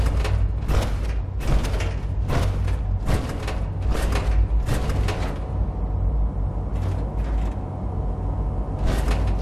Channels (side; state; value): both; identical; correlation 1.00